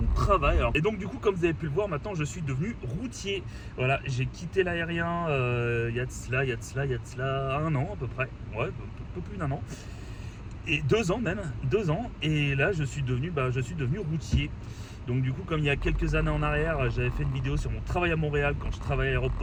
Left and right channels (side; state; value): both; identical; correlation 1.00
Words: travail. Et donc du coup, comme vous avez pu le voir, maintenant je suis devenu routier. Voilà, j'ai quitté l'aérien il y a de cela 1 an à peu près, ouais, un peu plus d'1 an. Et 2 ans même, 2 ans, et là je suis devenu routier. Donc du coup, comme il y a quelques années en arrière, j'avais fait une vidéo sur mon travail à Montréal quand je travaillais à